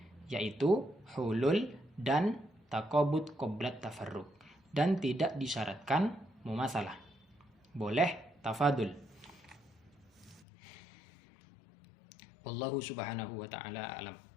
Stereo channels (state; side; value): drops out; right; at 10.5 s